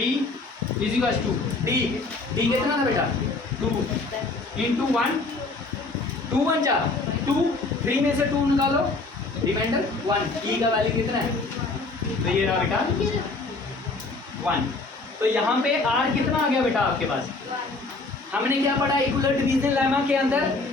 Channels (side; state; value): right; quieter; 3.5 dB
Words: is equal to D, D कितना था बेटा 2 इंटू 1, 2 1 जा 2, 3 में से 2 निकालो रिमाइंडर 1, ई का वैल्यू कितना है, तो ये रहा बेटा 1, तो यहाँ पे R कितना आ गया बेटा आपके पास, हमने क्या पढ़ा इक्वल डिवीजन लेमा के अंदर,